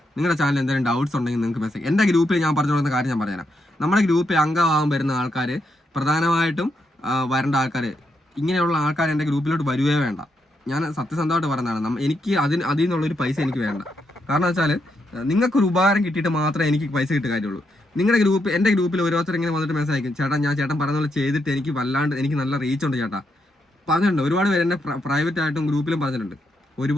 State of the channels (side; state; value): both; normal; correlation 0.80